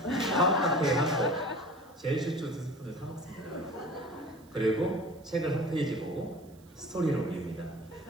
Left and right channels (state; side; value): noise; right; hiss, 28 dB below the sound